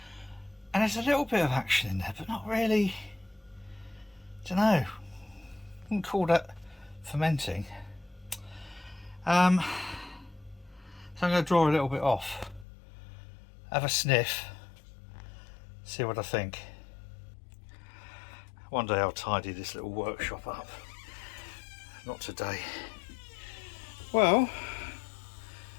And there's a little bit of action in there, but not really. Don't know. Wouldn't call that fermenting. So I'm going to draw a little bit off, have a sniff, see what I think. One day I'll tidy this little workshop up. Not today. Well,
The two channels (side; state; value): right; drops out; at 12.7 s